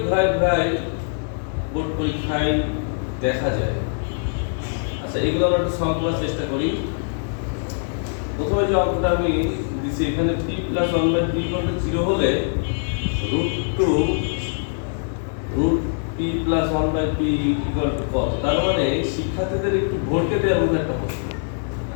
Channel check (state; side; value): silent; right; 64 dB below the other